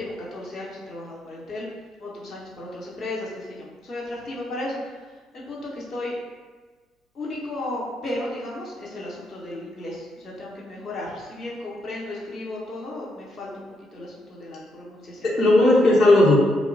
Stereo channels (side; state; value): both; normal; correlation 0.79